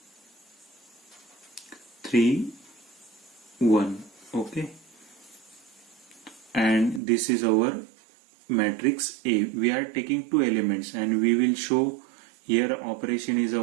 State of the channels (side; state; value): left; drops out; at 7.0 s